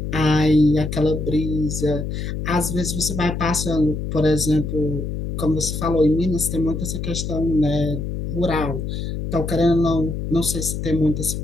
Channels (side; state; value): left; noise; hum, 4 dB below the sound